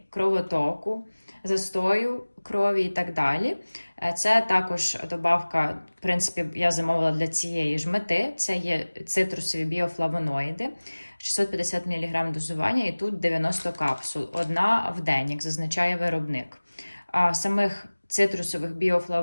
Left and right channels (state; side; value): inverted; both; correlation -1.00